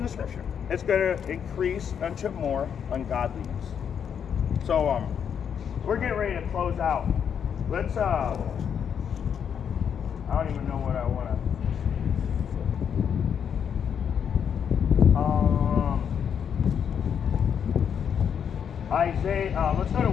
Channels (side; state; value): right; quieter; 7.8 dB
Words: the scripture, it's going to increase unto more ungodliness. So we're getting ready to close out. Let's I don't even know what I want to Isaiah, let's go to